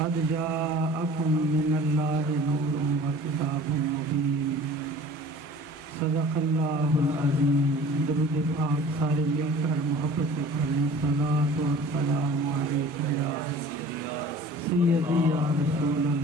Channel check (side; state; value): both; normal; correlation 0.45